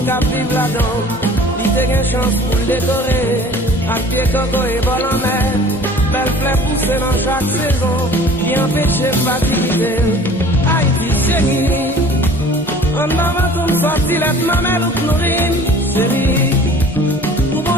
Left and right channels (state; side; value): normal; both; correlation 0.47